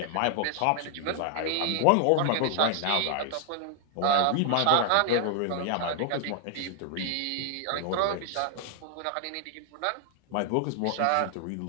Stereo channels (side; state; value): both; different; correlation 0.00